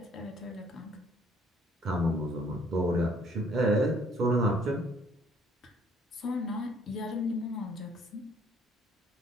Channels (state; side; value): normal; both; correlation 0.62